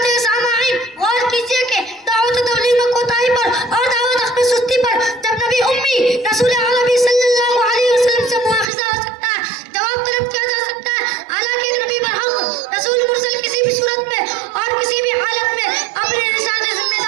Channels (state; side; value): drops out; left; at 8.7 s